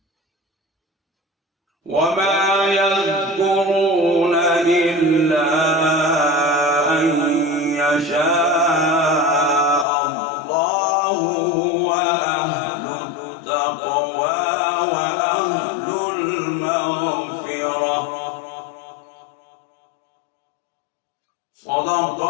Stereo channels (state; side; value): drops out; right; at 9.9 s